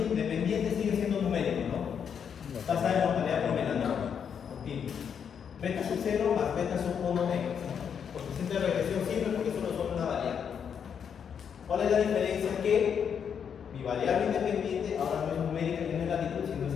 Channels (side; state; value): right; quieter; 7.5 dB